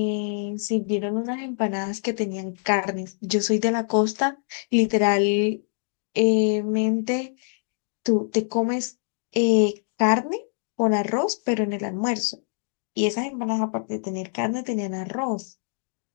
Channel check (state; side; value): silent; right; digital silence